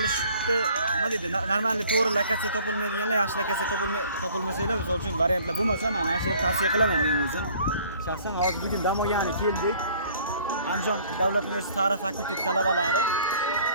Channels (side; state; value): both; inverted; correlation -0.54